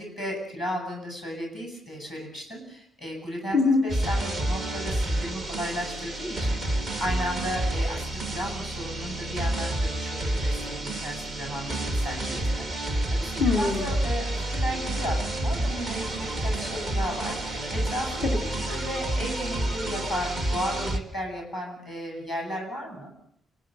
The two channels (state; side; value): normal; both; correlation 0.79